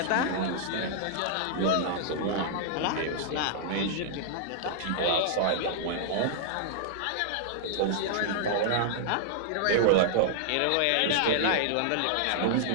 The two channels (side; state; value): both; different; correlation -0.01